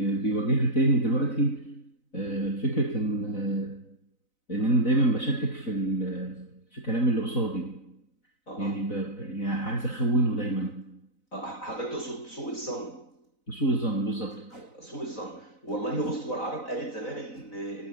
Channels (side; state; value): right; late; 4.0 ms